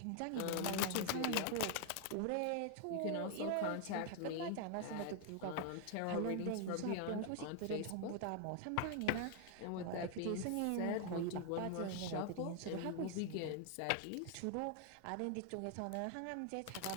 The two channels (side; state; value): both; different; correlation 0.00